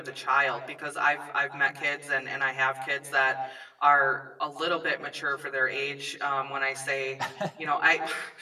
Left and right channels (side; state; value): both; identical; correlation 1.00